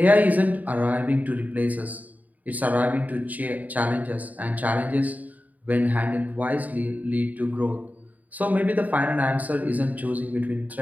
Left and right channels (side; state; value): left; late; 0.076 ms